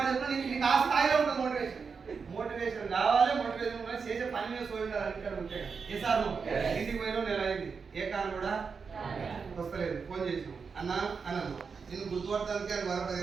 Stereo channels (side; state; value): left; quieter; 5.5 dB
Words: చెప్తున్నా, నీకు ఆ స్థాయిలో ఉంటుంది మోటివేషన్ కావాలి. మోటివేషన్ చేసే పని మీద సోయిండాలి. ఇక్కడ ఉంటే ఏ సార్ నువ్వు ఇంటికి పోయినా నెల అయింది, ఏ కారు కూడా వస్తలేదు, ఫోన్ చేసినావు అన్నాను. నేను గుర్తుపడటానికి అది